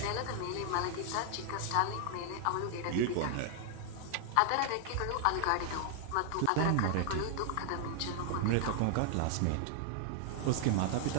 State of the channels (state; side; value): different; both; correlation 0.00